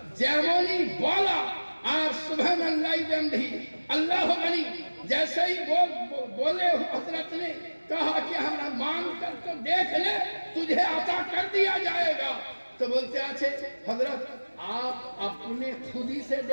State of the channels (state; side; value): inverted; both; correlation -1.00